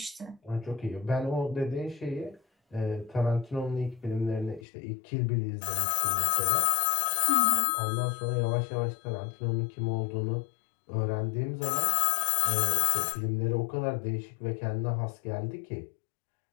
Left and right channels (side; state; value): right; drops out; at 4.7 s